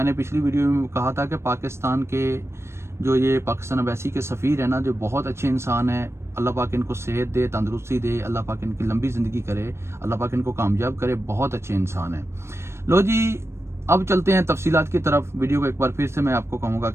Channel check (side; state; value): left; late; 0.13 ms